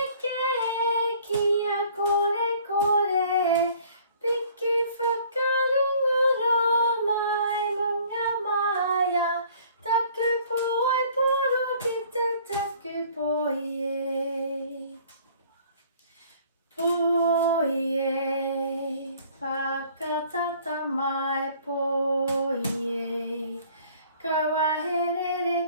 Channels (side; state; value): both; inverted; correlation -0.55